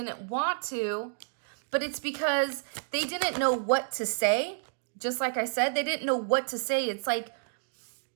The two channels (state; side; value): silent; left; digital silence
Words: want to, but it's because they didn't know what to say. Just like I said, they didn't know what to say. It's like